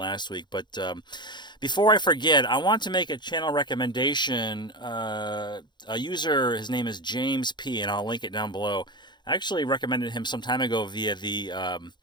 week. But before I forget, I want to make a channel recommendation. A user, his name is James P., and I'll link it down below. I actually recommended him some time ago via the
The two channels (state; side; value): late; right; 0.21 ms